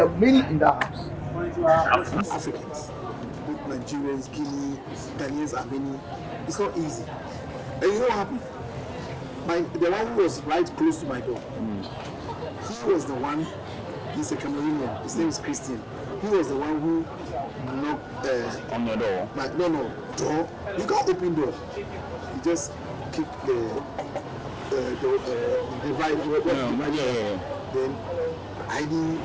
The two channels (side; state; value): both; identical; correlation 1.00